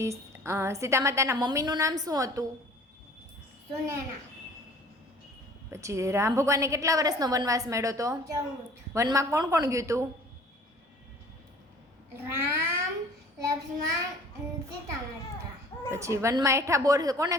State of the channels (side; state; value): both; normal; correlation 0.49